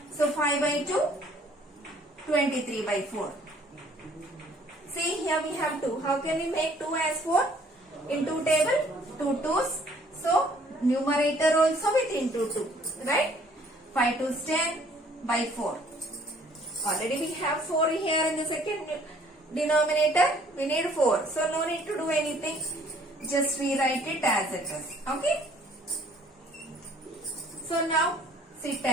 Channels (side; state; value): both; normal; correlation 0.59